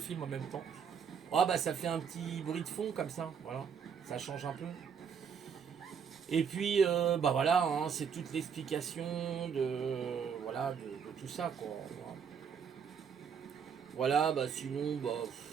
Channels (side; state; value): left; quieter; 7.0 dB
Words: en même temps. Oh bah ça fait un petit bruit de fond comme ça, voilà. Ça change un peu. Et puis, bah voilà, hein, c'est toute l'explication de tout ça, quoi. Voilà, bah sinon, bah,